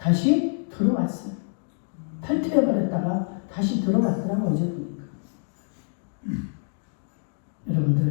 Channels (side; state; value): right; silent; digital silence